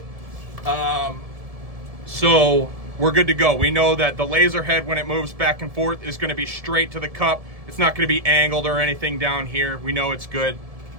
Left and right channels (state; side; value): late; left; 1.7 ms